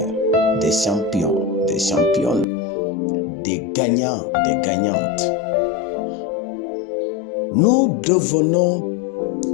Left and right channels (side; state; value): right; drops out; at 2.5 s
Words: des champions, des championnes, des gagnants, des gagnantes. Nous devenons